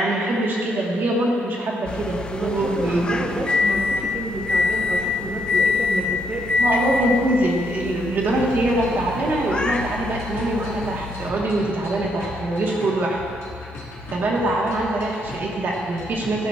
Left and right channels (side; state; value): both; normal; correlation 0.74